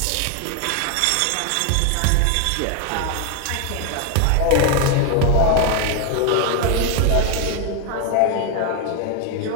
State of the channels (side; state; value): both; different; correlation 0.01